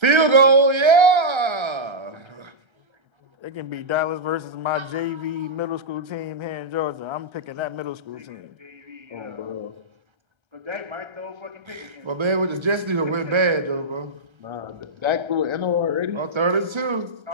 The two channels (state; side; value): late; left; 1.3 ms